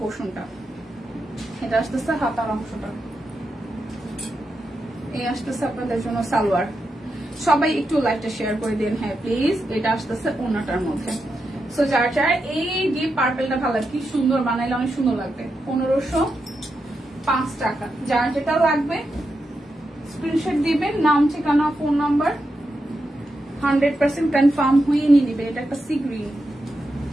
এটা আসতেছে হাতার অংশটা, এই আসতেছে আপনাদের জন্য সালোয়ার। সবাই একটু লাইভটা শেয়ার করে দিন, হ্যাঁ প্লিজ। এটা আসতেছে ওড়নাটার মধ্যে। সো যার যার এই ডিপ পার্পলটা ভালো লাগে, কি সুন্দর বানাইলে অনেক সুন্দর লাগবে। 1505 টাকা। যার যেটা লাগবে স্ক্রিনশট দিবেন, নাম ঠিকানা ফোন নাম্বার 100% কনফার্ম হয়ে নিয়ে নিবে। এটা একটা সি গ্রিন,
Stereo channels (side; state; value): both; normal; correlation 0.86